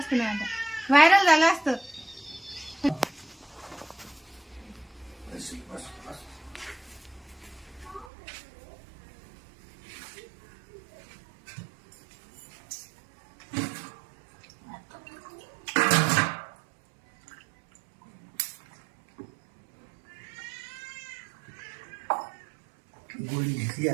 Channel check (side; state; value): left; drops out; at 8.1 s